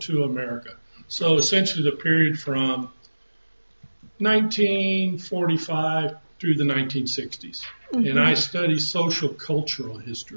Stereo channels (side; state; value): both; inverted; correlation -1.00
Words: II America. So essentially the period from 1945 through the 1960s. And I study social cultural